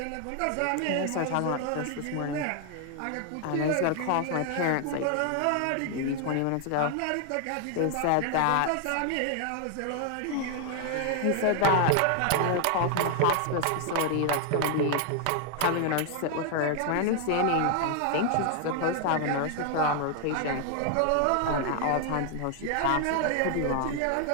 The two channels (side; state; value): both; different; correlation 0.00